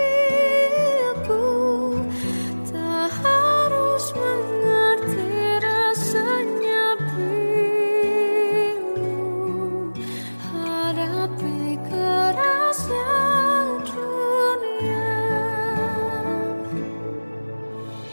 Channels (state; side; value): inverted; both; correlation -1.00